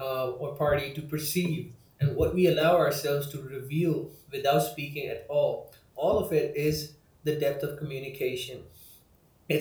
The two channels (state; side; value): identical; both; correlation 1.00